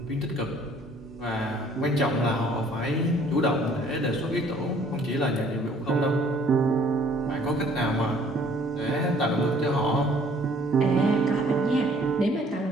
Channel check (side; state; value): both; normal; correlation 0.58